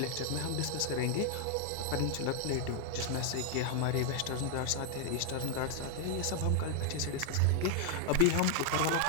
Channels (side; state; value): both; different; correlation 0.00